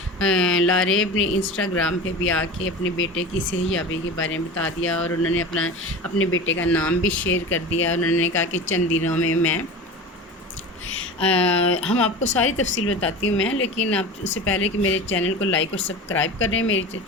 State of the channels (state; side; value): normal; both; correlation 0.32